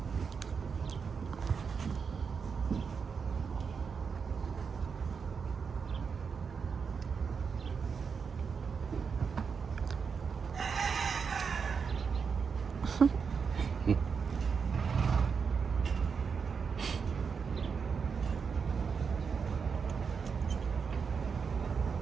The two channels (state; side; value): quieter; left; 5.9 dB